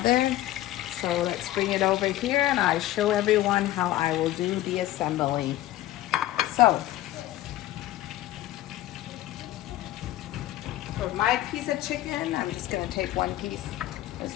there. So let's bring it over here and I show everyone how I will do the assembly. So, for my piece of chicken, I'm just gonna take one piece. Let's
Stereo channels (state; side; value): quieter; right; 14.9 dB